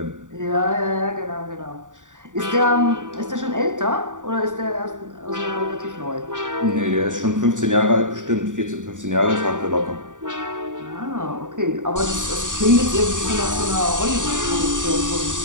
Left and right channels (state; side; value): late; left; 0.87 ms